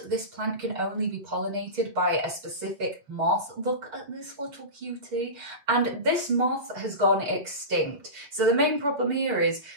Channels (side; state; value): left; late; 6.9 ms